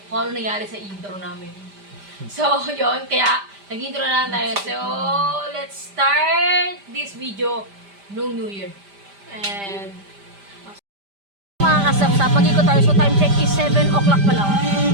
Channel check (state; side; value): late; left; 5.0 ms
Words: kung ano nangyari sa intro namin. So, yun. Kaya, nag-intro na lang tayo. So, let's start this video nung New Year. And, mga kasap-sap, mag-ikot tayo. So, time check is 7 o'clock pa lang.